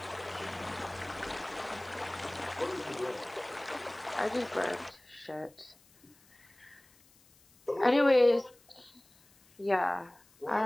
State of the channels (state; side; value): noise; left; hiss, 29 dB below the sound